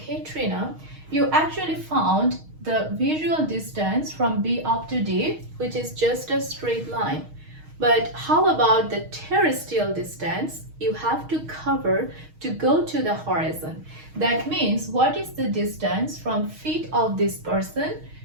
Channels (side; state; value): left; late; 6.4 ms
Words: Trina, you actually found the visual distance from B up to D, which is just a straight line. But how about the terrestrial distance you have to cover to go to the horizon? That means what is the distance from feet of this person